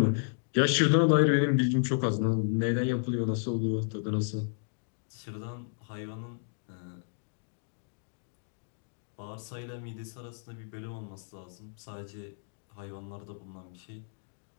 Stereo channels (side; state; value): right; silent; digital silence